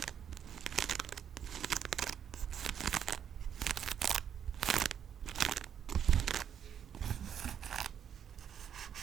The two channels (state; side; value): quieter; left; 8.7 dB